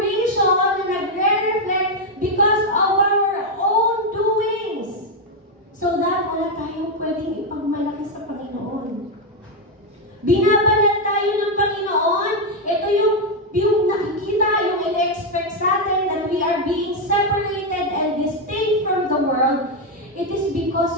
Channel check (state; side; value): normal; both; correlation 0.03